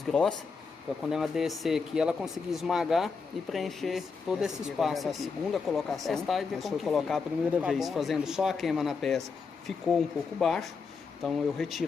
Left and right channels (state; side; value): quieter; right; 5.0 dB